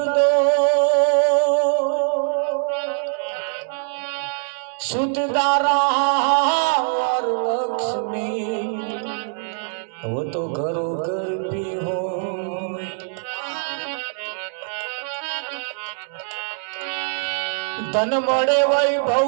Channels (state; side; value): silent; left; digital silence